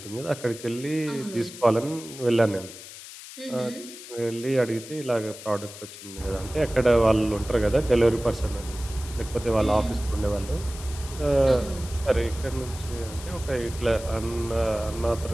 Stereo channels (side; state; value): left; noise; hiss, 14 dB below the sound